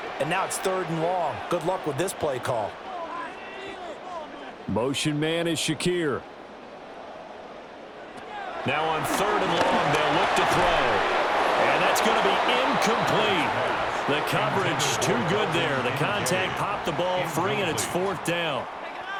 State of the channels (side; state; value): both; identical; correlation 1.00